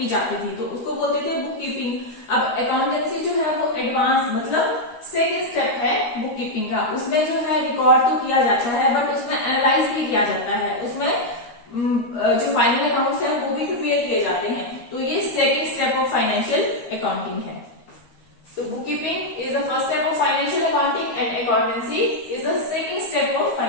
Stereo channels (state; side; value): late; right; 13 ms